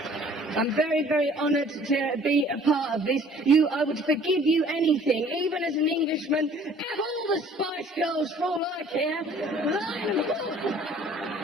I'm very, very honoured to be a part of this. I would forgive you anything, even as an Englishman. Have all the Spice Girls, for all I care. There's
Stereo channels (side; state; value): both; normal; correlation 0.53